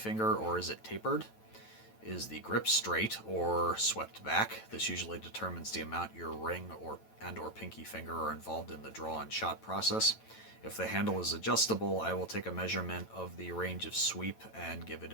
or is it tapered? Is the grip straight or swept back? This usually determines the amount your ring or pinky finger are involved in the draw and shot process. If the handle is adjustable, I will take a measurement of the range of sweep and give it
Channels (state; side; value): late; right; 9.1 ms